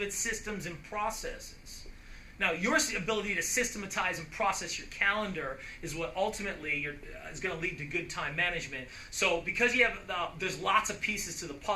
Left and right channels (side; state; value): both; identical; correlation 1.00